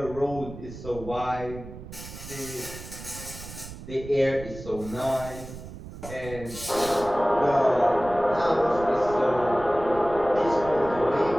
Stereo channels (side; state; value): right; noise; rumble, 13 dB below the sound